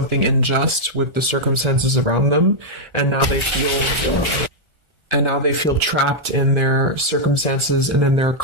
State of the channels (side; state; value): left; late; 1.4 ms